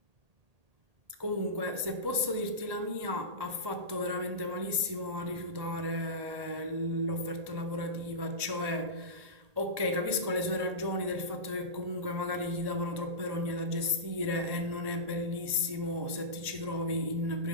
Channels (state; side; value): late; left; 1.8 ms